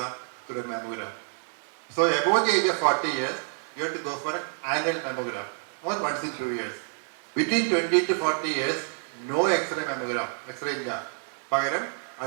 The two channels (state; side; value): silent; left; 59 dB below the other